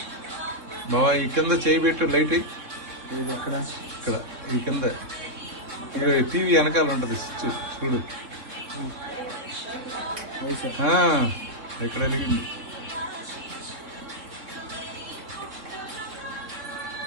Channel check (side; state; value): left; late; 3.6 ms